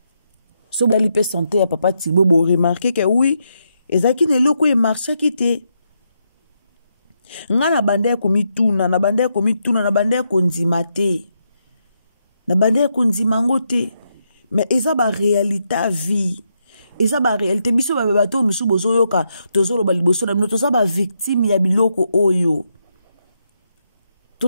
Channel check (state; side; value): inverted; both; correlation -0.81